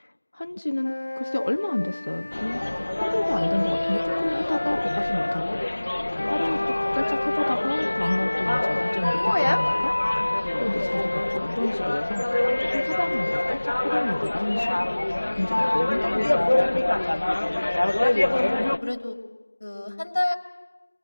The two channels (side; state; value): both; inverted; correlation -1.00